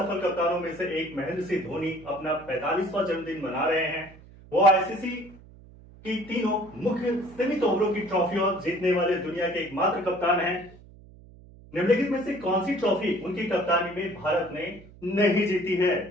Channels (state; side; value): noise; right; hum, 22 dB below the sound